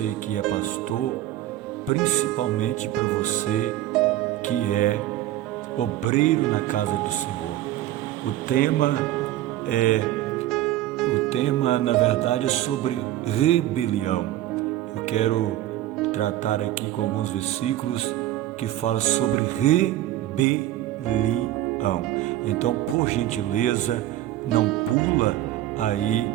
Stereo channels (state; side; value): quieter; left; 14.0 dB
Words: que é pastor, principalmente para você que é obreiro na casa do Senhor. O tema na verdade é sobre rebelião. Eu quero tratar aqui com alguns versículos que falam sobre rebelião. Então, por gentileza, não pula aí